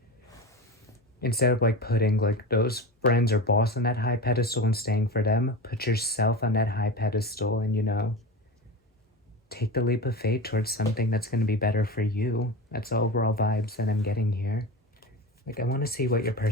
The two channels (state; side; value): normal; both; correlation 0.26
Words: instead of putting those friends or boss on that high pedestal and staying for them, put yourself on that high pedestal and take the leap of faith towards something that's going to be better for you. That's the overall vibes that I'm getting here. I want to see what your